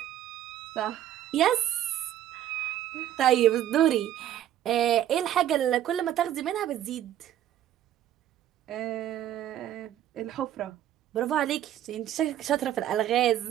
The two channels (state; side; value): quieter; left; 11.8 dB